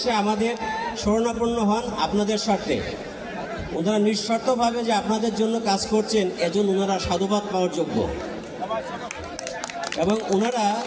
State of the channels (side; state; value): both; identical; correlation 1.00